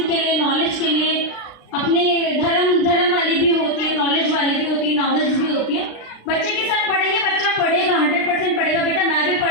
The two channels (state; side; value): late; right; 36 ms